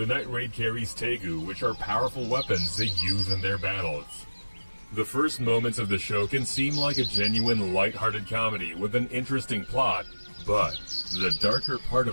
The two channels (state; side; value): inverted; both; correlation -1.00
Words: Night Raid carries Tegu, which are powerful weapons they use in their battles. The first moments of the show can seem like a genuine light-hearted comedy with an interesting plot, but the darker part